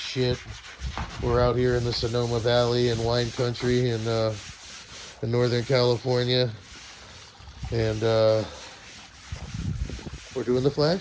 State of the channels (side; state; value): both; identical; correlation 1.00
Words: We're out here in the Sonoma Valley in wine country in Northern California, and we're doing the